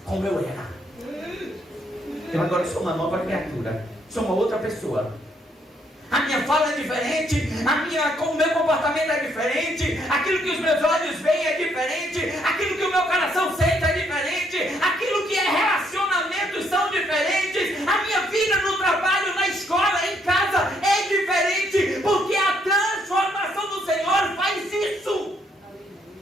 como eu era. Eu agora sou uma nova criatura. Sou uma outra pessoa. A minha fala é diferente, o meu comportamento é diferente, aquilo que os meus olhos veem é diferente, aquilo que o meu coração sente é diferente, aquilo que é relacionamentos são diferentes, a minha vida no trabalho, na escola, em casa é diferente, porque a transformação do Senhor faz isso.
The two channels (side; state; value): both; normal; correlation 0.71